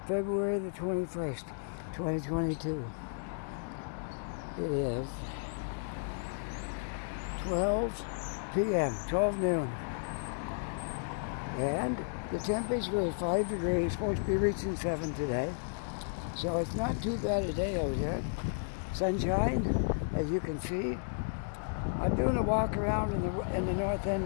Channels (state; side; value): silent; right; digital silence